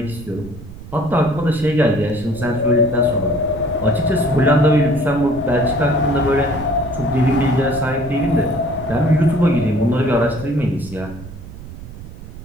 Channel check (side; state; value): right; noise; rumble, 14 dB below the sound